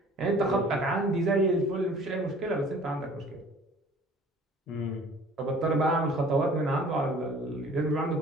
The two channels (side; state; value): both; normal; correlation 0.50